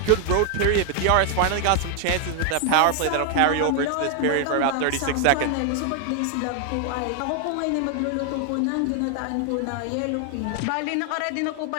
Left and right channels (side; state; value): both; different; correlation 0.00